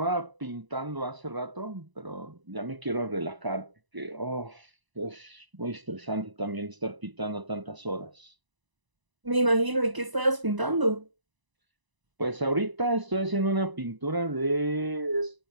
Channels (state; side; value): late; left; 1.0 ms